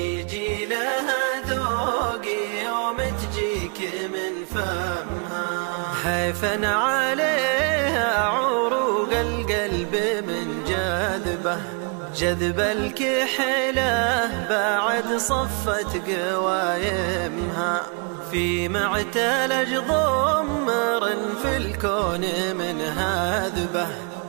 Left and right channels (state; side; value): quieter; left; 36.4 dB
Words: لها ذوق يوم تجيك من فمها. حيفا عليها عروق القلب من جذبه، جذب الكحلة بعد صفت قوايمها، في معتلج ضمر في الكون من هذبه،